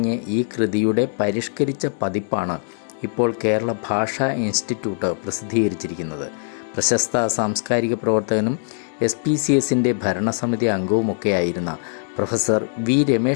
ഈ കൃതിയുടെ പരിഷ്കരിച്ച പതിപ്പാണ് ഇപ്പോൾ കേരള ഭാഷാ ഇൻസ്റ്റിറ്റ്യൂട്ട് പ്രസിദ്ധീകരിച്ചിരിക്കുന്നത്. പ്രശസ്ത സാംസ്കാരിക പ്രവർത്തകനും SPCSൻ്റെ ഭരണസമിതി അംഗവുമൊക്കെയായിരുന്ന പ്രൊഫസർ വി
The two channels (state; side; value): silent; right; 64 dB below the other